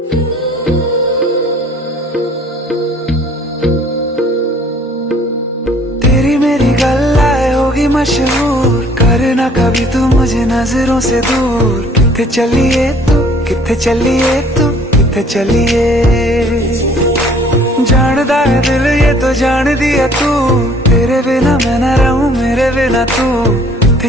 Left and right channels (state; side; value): normal; both; correlation 0.56